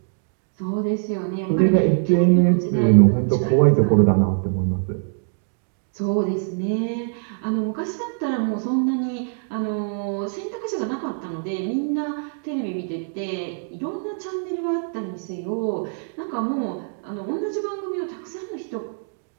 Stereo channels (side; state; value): left; silent; digital silence